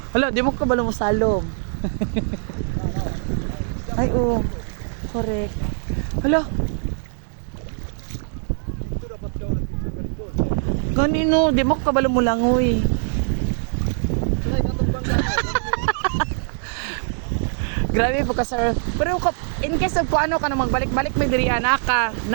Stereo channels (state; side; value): silent; left; digital silence